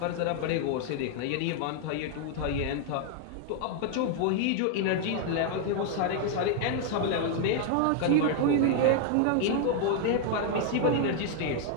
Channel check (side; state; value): both; different; correlation 0.00